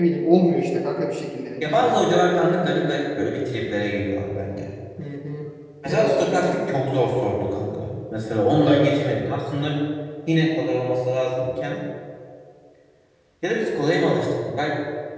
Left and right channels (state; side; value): identical; both; correlation 1.00